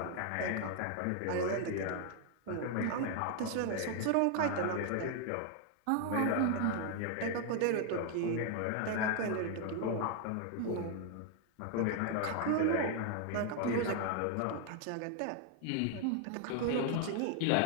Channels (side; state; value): both; different; correlation 0.00